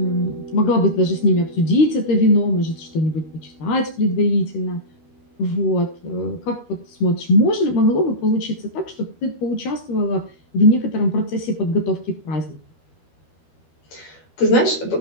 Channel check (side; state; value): right; late; 13 ms